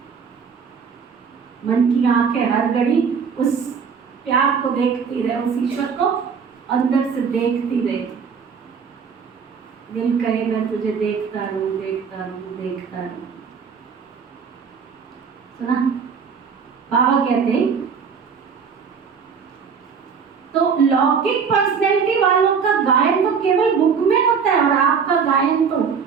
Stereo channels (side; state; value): left; quieter; 6.2 dB